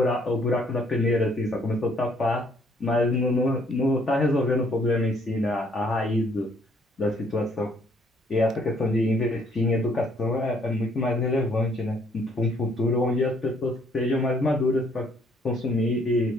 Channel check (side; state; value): both; normal; correlation 0.65